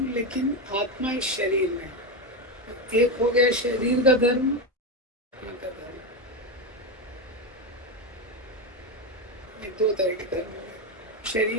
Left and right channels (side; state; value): both; normal; correlation 0.12